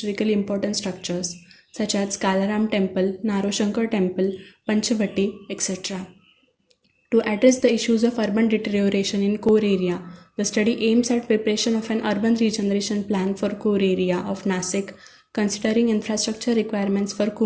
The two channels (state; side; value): identical; both; correlation 1.00